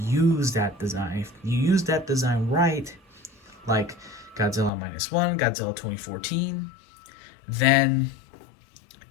use that design. If you use that design right, like Godzilla -1, Godzilla 2014, then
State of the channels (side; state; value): right; drops out; at 4.7 s